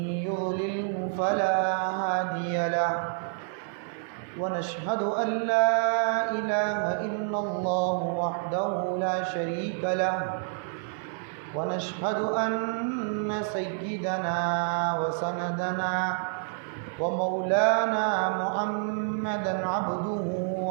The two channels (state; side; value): silent; left; digital silence